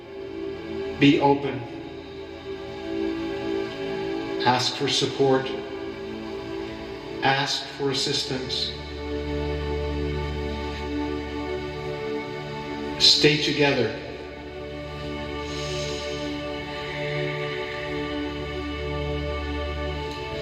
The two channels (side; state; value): both; identical; correlation 1.00